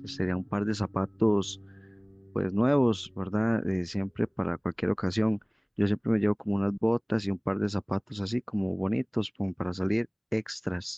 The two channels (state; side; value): identical; both; correlation 1.00